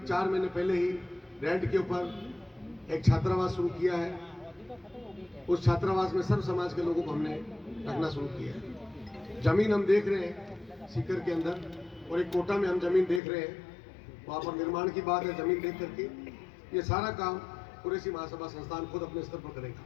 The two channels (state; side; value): drops out; right; at 13.2 s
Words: महीने पहले ही रेंट के ऊपर एक छात्रावास शुरू किया है। उस छात्रावास में सर्व समाज के लोगों को हमने रखना शुरू किया है। जमीन हम देख रहे हैं सीकर के अंदर, और एक कोटा में हम जमीन देख रहे हैं, वहाँ पर निर्माण की बात है। जमीन देख करके ये सारा काम कुरैशी महासभा संस्थान खुद अपने स्तर पर करेगा।